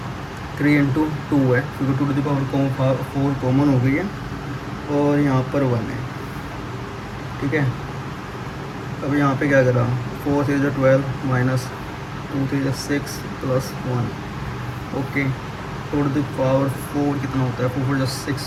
3 इंटू 2 है क्योंकि two to the power 4 common हो गई है, और यहाँ पर 1 है, ठीक है। अब यहाँ पे क्या करा, 4 3 12 minus 2 3 6 plus 1, okay. Two to the power 4 कितना होता है, 4 4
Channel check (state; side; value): identical; both; correlation 1.00